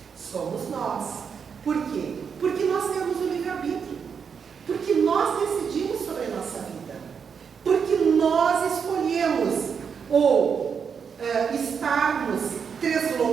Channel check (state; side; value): quieter; left; 6.6 dB